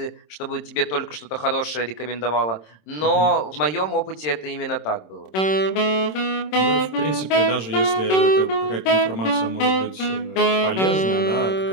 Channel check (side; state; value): right; late; 26 ms